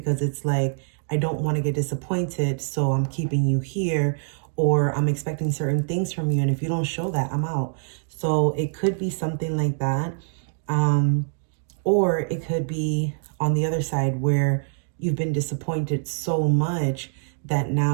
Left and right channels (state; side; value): silent; left; digital silence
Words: it's like, I don't want to get disappointed, so I'm keeping you here, or I'm expecting certain things from you. And if you don't show that, I'm out. So it could be something like that. Or it could be on the other side where you've been disappointed so much that